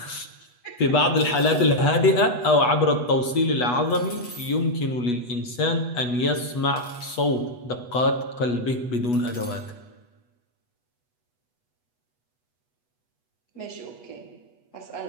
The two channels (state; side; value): late; right; 8.2 ms